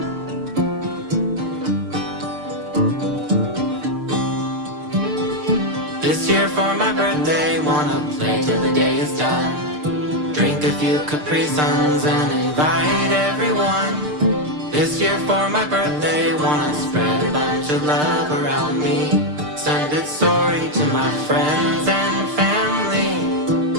This year for my birthday, wanna play till the day is done. Drink a few Capri Suns and invite everyone. This year for my birthday, wanna spread a bunch of love around me. Send it sorry to my friends and family.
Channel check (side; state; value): left; late; 6.7 ms